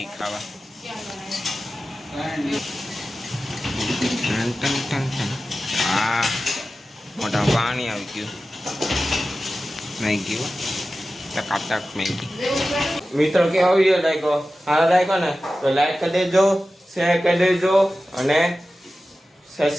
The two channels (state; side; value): normal; both; correlation 0.94